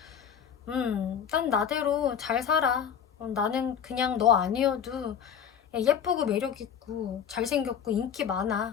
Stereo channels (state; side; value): quieter; right; 8.0 dB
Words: 난 나대로 잘 살아. 나는 그냥 너 아니어도 예쁘고 매력있고 잘생겼고 인기